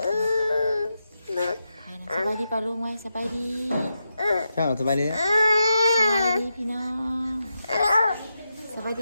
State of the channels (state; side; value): inverted; both; correlation -0.87